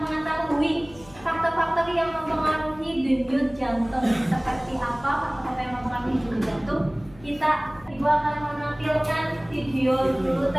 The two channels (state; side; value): noise; left; hum, 23 dB below the sound